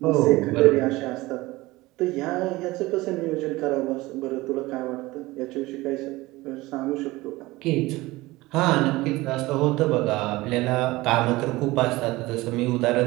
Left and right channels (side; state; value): left; quieter; 19.9 dB